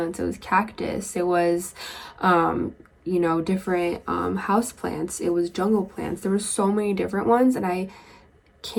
it was cactus, it was different house plants, it was jungle plants. There were so many different ones, and I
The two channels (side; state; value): both; identical; correlation 1.00